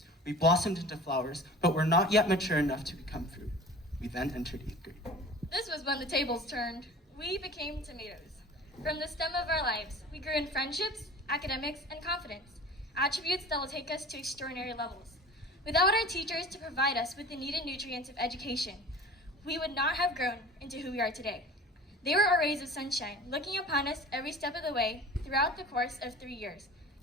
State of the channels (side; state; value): both; normal; correlation 0.41